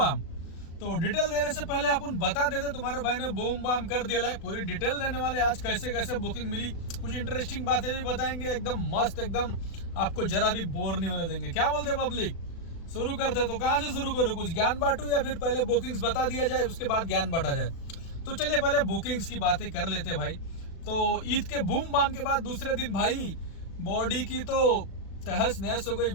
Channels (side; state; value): right; late; 36 ms